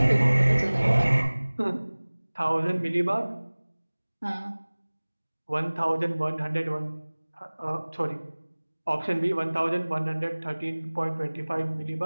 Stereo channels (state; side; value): inverted; both; correlation -1.00